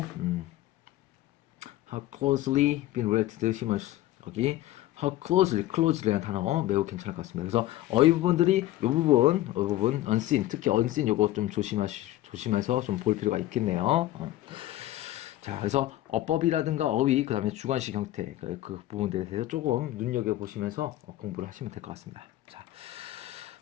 how closely been related to humans 여기 how closely라는 단어 매우 괜찮을 것 같습니다. 그래서 어휘 부분들이 이 부분 unseen 특히 unseen 요거 좀 조심해서 좀 볼 필요가 있겠네요. 자, 그래서 어법이라든가 어휘, 그 다음에 주관식 형태, 그 부분들에 대해서 조금 눈여겨보시면서 공부를 하시면 될 것 같습니다. 자,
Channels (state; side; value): quieter; right; 15.2 dB